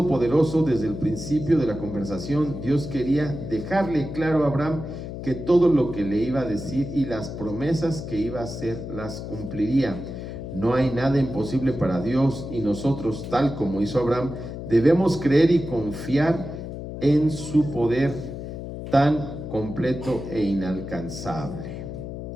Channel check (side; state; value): left; noise; hum, 8 dB below the sound